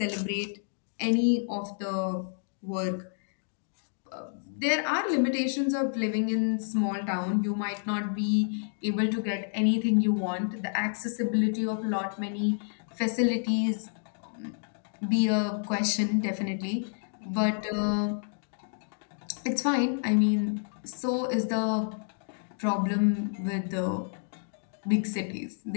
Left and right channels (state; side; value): silent; right; digital silence